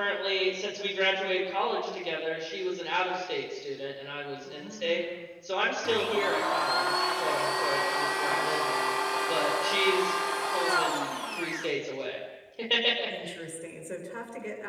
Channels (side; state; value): both; identical; correlation 1.00